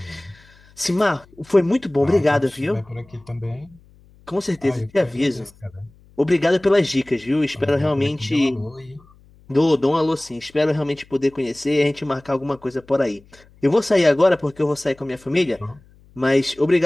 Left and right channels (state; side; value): noise; left; hum, 28 dB below the sound